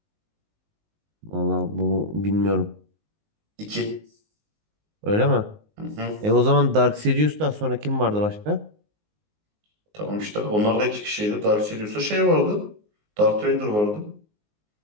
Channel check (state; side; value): late; left; 19 ms